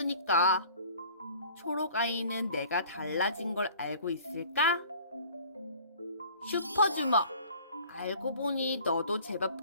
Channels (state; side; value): inverted; both; correlation -0.49